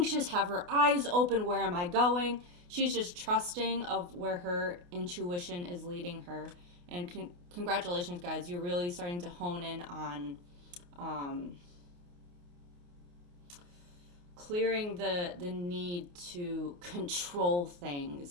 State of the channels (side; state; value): left; late; 28 ms